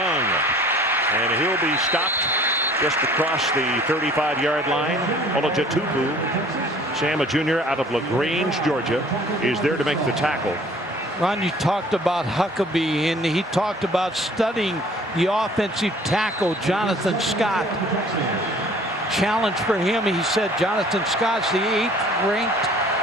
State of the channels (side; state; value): both; normal; correlation 0.52